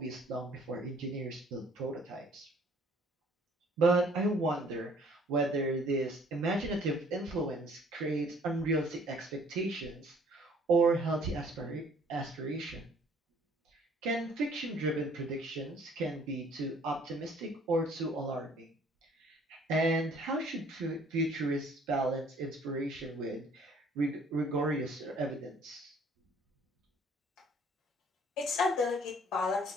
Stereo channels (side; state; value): both; normal; correlation 0.58